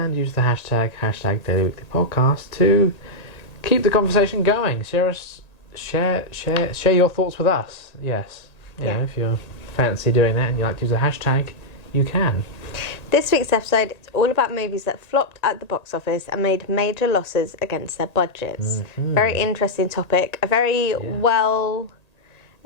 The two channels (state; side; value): late; right; 1.8 ms